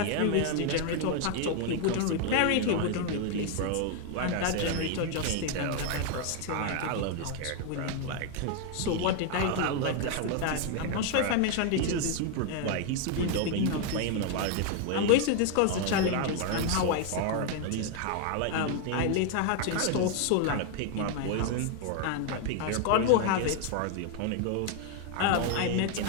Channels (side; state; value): both; different; correlation 0.00